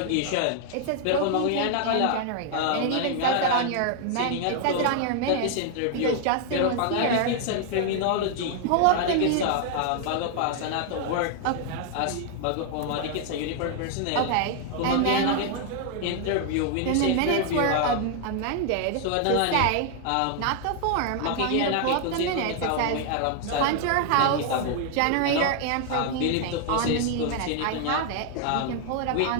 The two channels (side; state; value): both; different; correlation 0.00